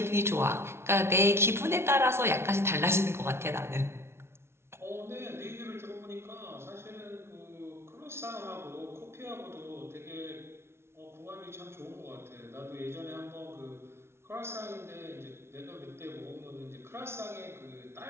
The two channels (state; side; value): late; left; 0.12 ms